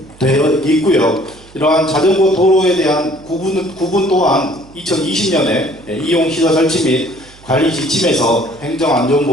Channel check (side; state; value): right; noise; hum, 24 dB below the sound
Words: 되어 있고요. 이러한 자전거 도로에 대한 구분 또한 2020년에 이용시설 설치 및 관리 지침에서